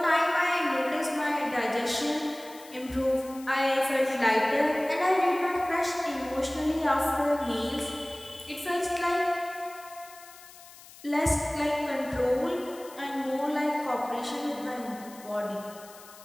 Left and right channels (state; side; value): noise; left; hiss, 20 dB below the sound